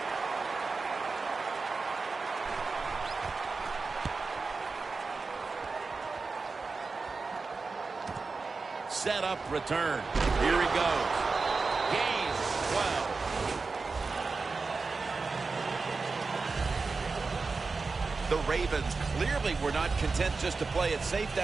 Set up, return. Here he goes. Gain 12. The Ravens clearly were not content just to play it safe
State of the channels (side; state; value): left; quieter; 4.2 dB